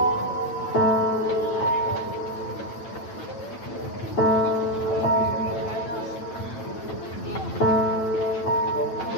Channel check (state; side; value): late; right; 9.0 ms